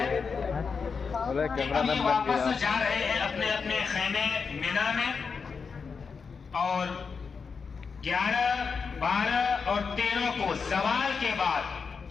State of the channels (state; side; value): quieter; right; 5.4 dB